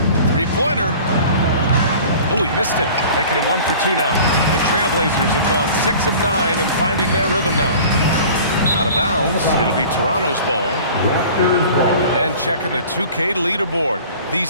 Three-pointer. Oh, he missed it. Making him 1 for 2 now. The Trailblazers have gone 6 of 9 and finding their rhythm now. Out of bounds. It'll be Toronto's ball. Raptors ball. And checking the 2K leaderboard.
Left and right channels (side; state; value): both; inverted; correlation -0.43